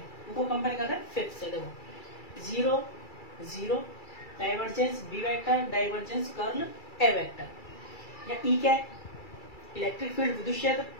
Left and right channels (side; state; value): right; late; 2.3 ms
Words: को कंपेयर कर रहे हैं 5 से। देखो 0 0 divergence B vector divergence curl A vector, या ई क्या है, इलेक्ट्रिक फील्ड विद्युत क्षेत्र,